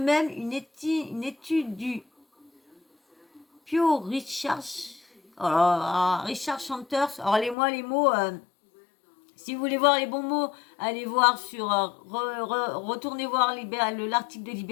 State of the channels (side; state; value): right; drops out; at 7.6 s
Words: une étude du Pew Research, Richard Chanters, alors les mots, si vous voulez voir les bons mots, allez voir sur, retournez voir l'article de